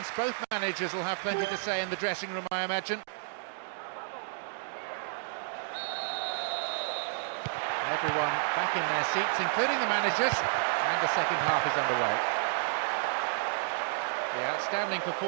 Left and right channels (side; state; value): left; silent; digital silence